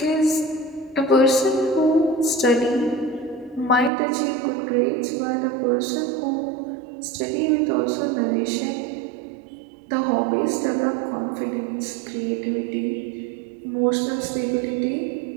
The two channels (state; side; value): drops out; left; at 3.9 s